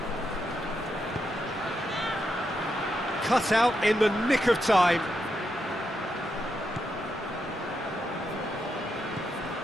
Cut out in the nick of time.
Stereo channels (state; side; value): normal; both; correlation 0.83